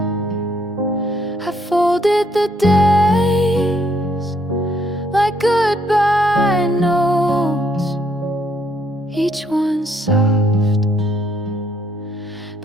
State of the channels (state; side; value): normal; both; correlation 0.70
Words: I folded the days like goodbye notes, each one soft,